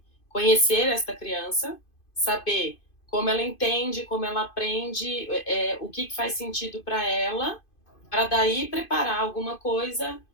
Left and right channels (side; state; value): right; late; 2.5 ms